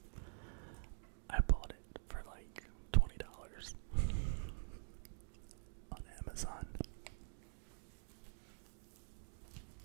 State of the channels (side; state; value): left; silent; digital silence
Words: I bought it for like $20 on Amazon.